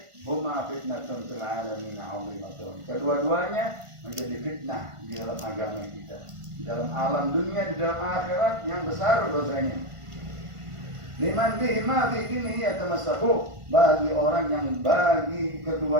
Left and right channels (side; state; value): left; late; 1.5 ms